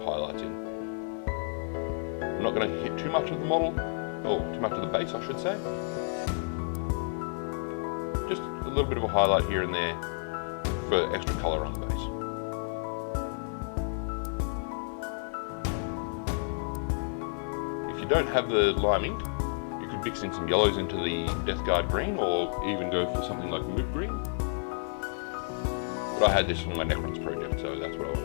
highlights in. I'm not going to hit too much of the model, or too much of the base I should say. Just a little bit of a highlight here and there for extra colour on the base. If you don't have the lime ink, you could mix in some yellows into the Death Guard green, or even go for something like moot green. But I had this for my Necrons project, so that's what I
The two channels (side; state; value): right; silent; digital silence